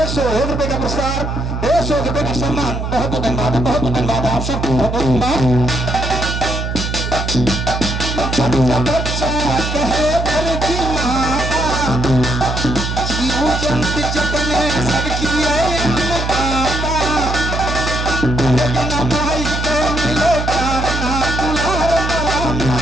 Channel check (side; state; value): right; noise; hum, 3 dB below the sound